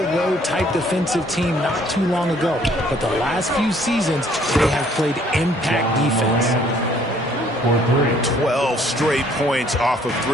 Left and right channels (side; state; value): both; normal; correlation 0.61